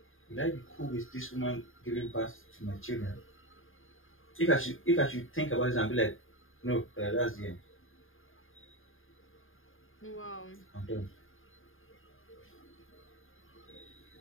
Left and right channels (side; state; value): right; late; 0.59 ms